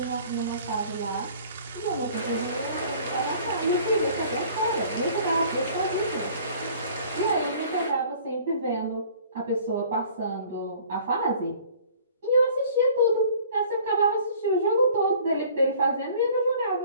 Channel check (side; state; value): both; inverted; correlation -0.51